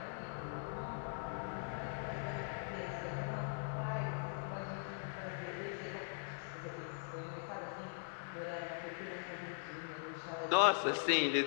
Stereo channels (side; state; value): right; silent; 50 dB below the other